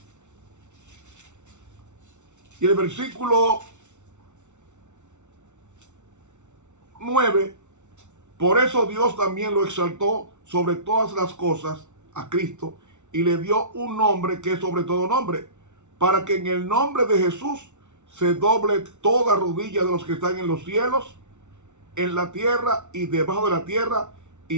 y el versículo 9, por eso Dios también lo exaltó sobre todas las cosas a Cristo y le dio un nombre que es sobre todo nombre, para que en el nombre de Jesús se doble toda rodilla de los que están en los cielos, en la tierra y debajo de la tierra,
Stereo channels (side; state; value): left; late; 0.83 ms